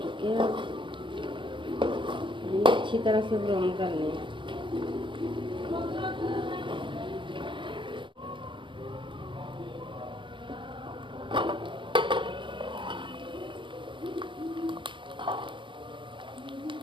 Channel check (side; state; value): left; late; 0.24 ms